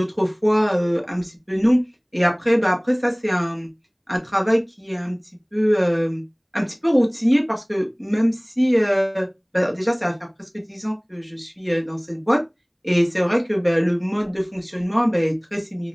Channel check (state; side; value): identical; both; correlation 1.00